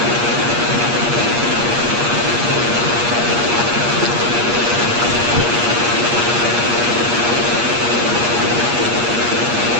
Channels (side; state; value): left; late; 8.4 ms